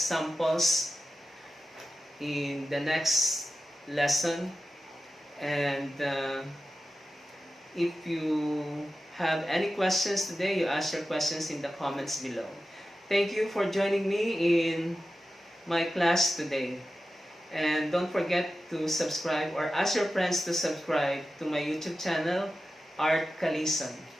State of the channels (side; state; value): both; normal; correlation 0.93